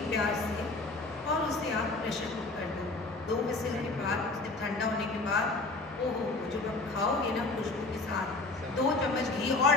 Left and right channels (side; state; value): right; quieter; 3.4 dB